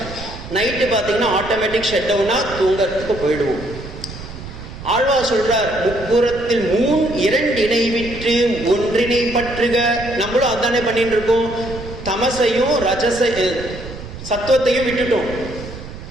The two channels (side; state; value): right; noise; rumble, 12 dB below the sound